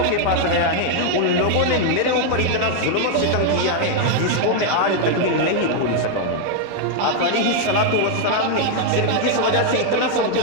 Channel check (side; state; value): both; different; correlation 0.00